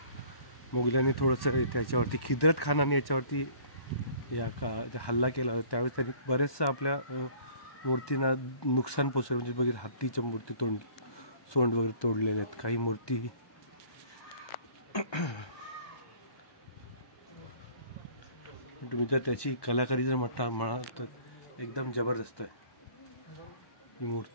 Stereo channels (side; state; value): right; late; 1.2 ms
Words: मोगलांनी थोडंसं त्याच्यावरती खिद्रत खानाने याच्यावरती हल्ला केला. त्यावेळेस त्यांनी बरेचसं आपल्या मूर्तींना नुकसान पोचवलं. म्हणजे बघितलं हत्तीच्या मूर्ती सोंड वगैरे तोडलेले आहेत. काही मूर्ती तुम्ही जर त्याची कलाकारी जर म्हणाल तर एकदम जबरदस्त आहे. ही